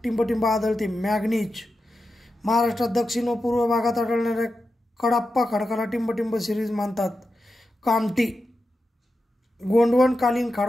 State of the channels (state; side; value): normal; both; correlation 0.90